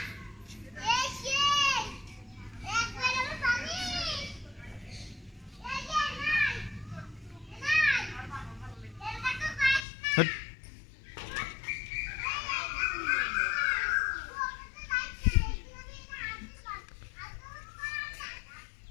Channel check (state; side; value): drops out; right; at 9.8 s